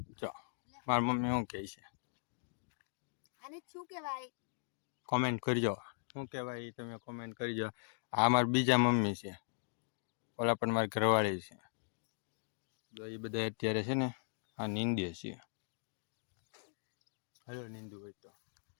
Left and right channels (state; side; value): silent; right; digital silence